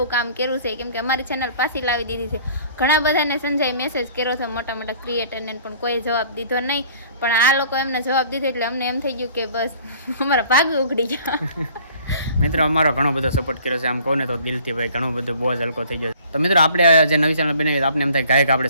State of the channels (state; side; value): inverted; both; correlation -0.52